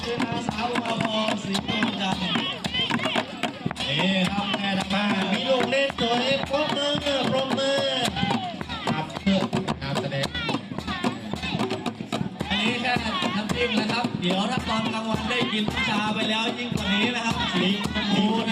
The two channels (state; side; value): identical; both; correlation 1.00